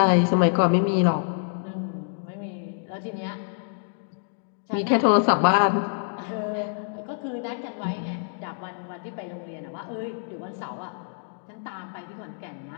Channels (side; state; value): right; silent; digital silence